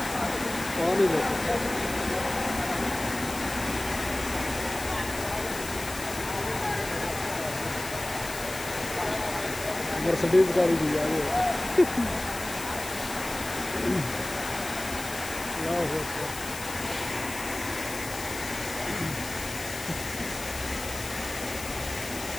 पानी देखो, मर्सिडीज गाड़ी भी जा रही है।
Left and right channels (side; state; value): left; noise; hiss, 10 dB below the sound